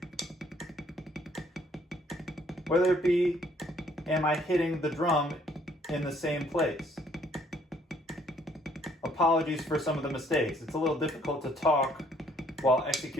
whether it be, am I hitting the drum in the same place? Apologies for some of the mistakes. It's a little difficult to talk while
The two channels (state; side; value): normal; both; correlation 0.64